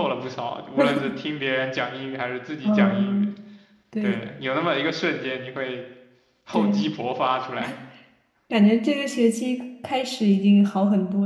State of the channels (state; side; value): identical; both; correlation 1.00